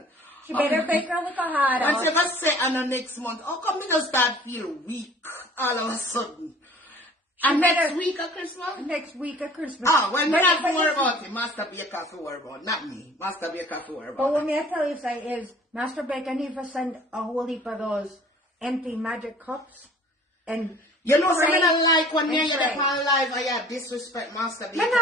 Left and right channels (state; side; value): normal; both; correlation 0.49